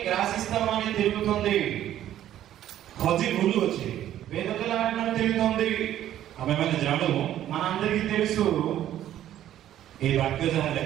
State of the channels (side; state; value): left; quieter; 12.0 dB